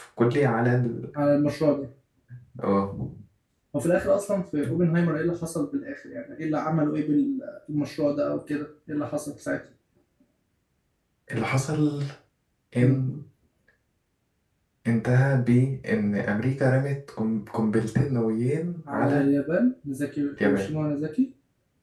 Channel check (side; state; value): both; identical; correlation 1.00